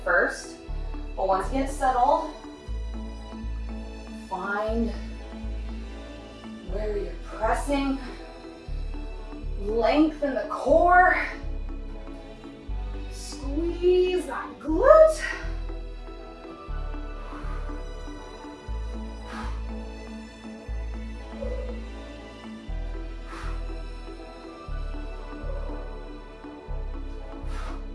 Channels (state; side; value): identical; both; correlation 1.00